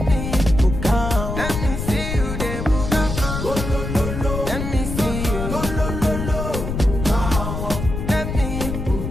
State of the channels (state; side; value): noise; left; rumble, 5 dB below the sound